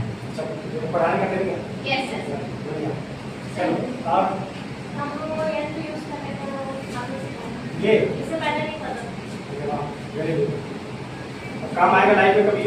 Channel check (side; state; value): both; identical; correlation 1.00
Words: पढ़ाने का तरीका? Yes sir. बढ़िया। चलो आप हम लोग को ऐसे यूज करने को आपने सिखाया, ये इससे पहले नहीं पता। Very good. काम आएगा लाइफ में, कभी